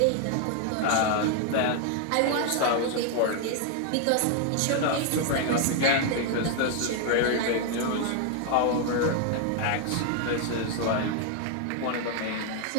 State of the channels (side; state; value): both; different; correlation 0.00